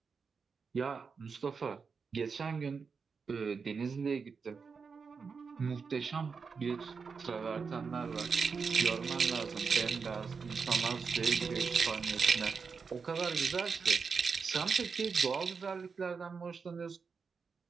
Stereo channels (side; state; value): left; quieter; 5.3 dB